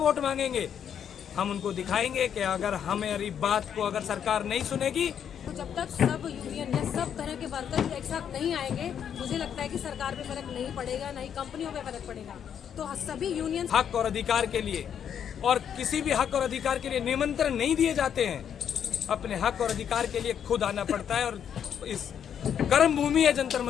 मांगेंगे। हम उनको दिखाएंगे कि अगर हमारी बात को अगर सरकार नहीं सुनेगी, तो जब तक सब यूनियन या सब तरह के वर्कर एक साथ नहीं आएंगे, मुझे लगता है कि सरकार पे फर्क नहीं पड़ेगा, ना ही कंपनियों पे फर्क पड़ेगा। तो सभी यूनियन हक और अधिकार के लिए, और किसी भी हक और अधिकार के लिए निमंत्रण नहीं दिए जाते हैं। अपने हक और अधिकार के लिए खुद आना पड़ता है। और इस कर्म भूमि है जंतर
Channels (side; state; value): right; quieter; 8.6 dB